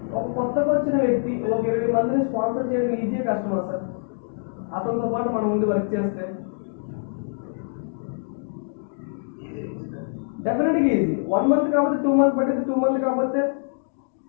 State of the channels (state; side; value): silent; right; digital silence